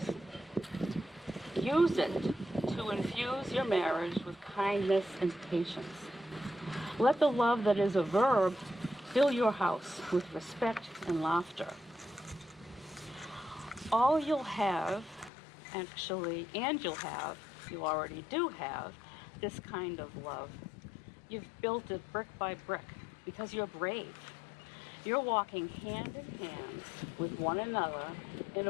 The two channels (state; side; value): drops out; right; at 15.3 s